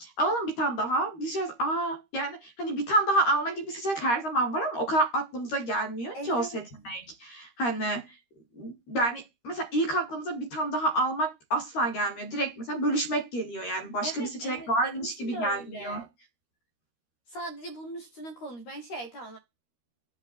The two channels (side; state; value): right; late; 13 ms